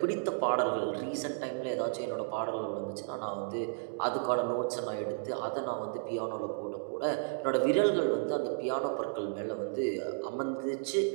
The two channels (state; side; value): silent; left; digital silence